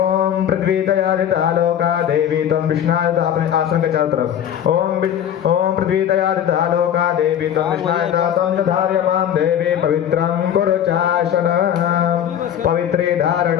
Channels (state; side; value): quieter; right; 9.8 dB